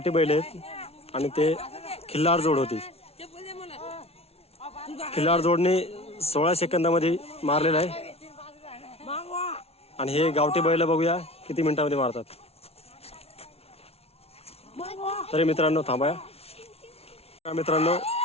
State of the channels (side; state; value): right; late; 0.30 ms